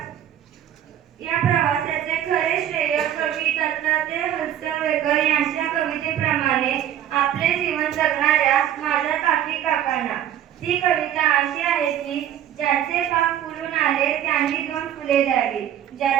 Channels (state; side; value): quieter; left; 10.9 dB